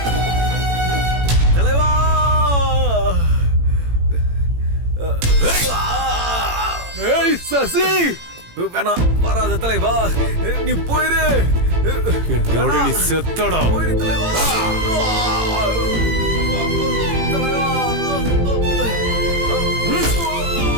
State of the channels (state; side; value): late; left; 18 ms